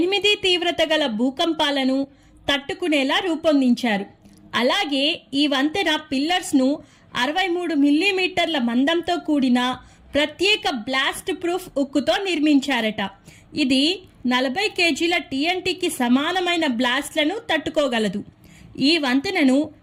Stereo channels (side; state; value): both; identical; correlation 1.00